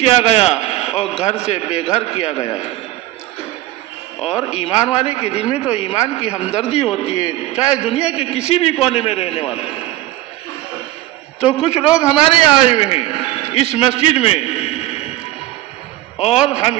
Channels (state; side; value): quieter; left; 16.3 dB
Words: گیا اور گھر سے بے گھر کیا گیا۔ اور ایمان والے کے دل میں تو ایمان کی ہمدردی ہوتی ہے، چاہے دنیا کے کسی بھی کونے میں رہنے والا۔ تو کچھ لوگ ہمارے آئے ہوئے ہیں اس مسجد میں، اور ہم